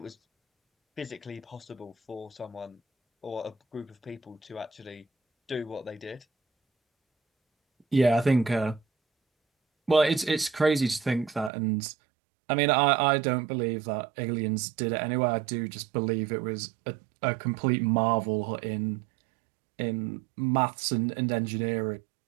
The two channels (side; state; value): left; drops out; at 11.5 s